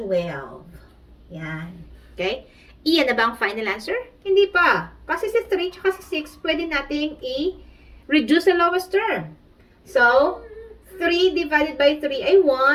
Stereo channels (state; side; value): identical; both; correlation 1.00